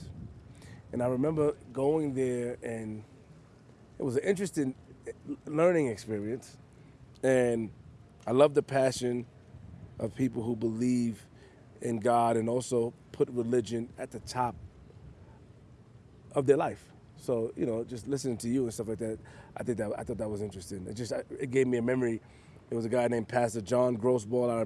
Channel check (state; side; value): identical; both; correlation 1.00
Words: And I remember going there, and it was an interesting learning experience. And I love the passion of people who believe in God and also put religion at the top of their life. So, just listening to you and stuff like that, I thought that was interesting. It gave me a memory. There was a guy named Pastor John Grossball. I